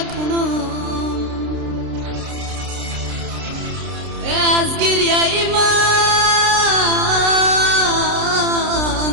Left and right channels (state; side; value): late; left; 30 ms